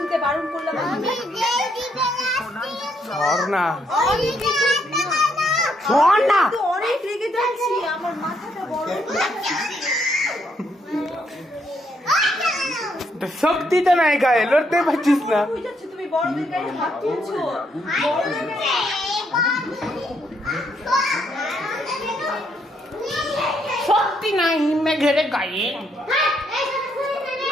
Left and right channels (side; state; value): both; normal; correlation 0.74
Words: বারণ করলাম। অনেক রেগে যাচ্ছি, আমার মাথাটা বড় শক্তি তো নাই গায়ে, লড়তে পারছিস না। তুমি বড়দের গায়ে হাত তুলছো। শক্তি নাই মেঘের গায়ে।